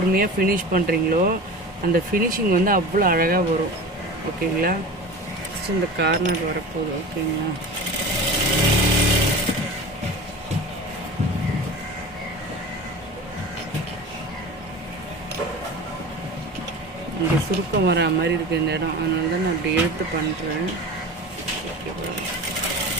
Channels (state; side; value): normal; both; correlation 0.33